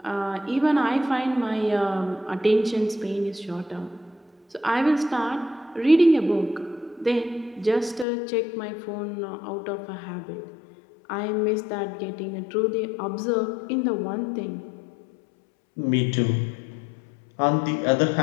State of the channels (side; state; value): right; drops out; at 8.1 s